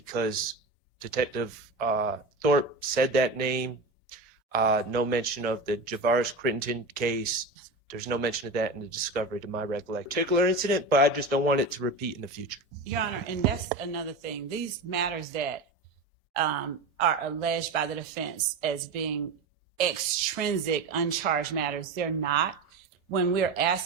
Detective Thorpe said that name. No mention of the Javaris Crittenden case. There's no mention of that in the discovery, to my recollection. Particular incident, but I just don't want it to repeat in the future. Your Honor, and that's another thing. These matters that are alleged by the defense as being extrinsic, uncharged matters, they're not. When we're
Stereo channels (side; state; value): left; quieter; 3.2 dB